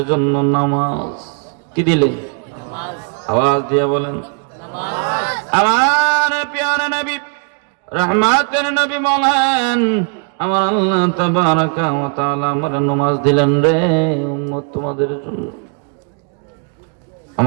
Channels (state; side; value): quieter; left; 37.3 dB